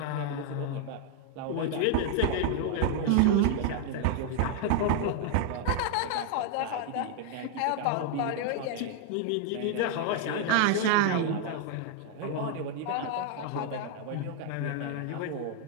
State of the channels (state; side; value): different; both; correlation 0.00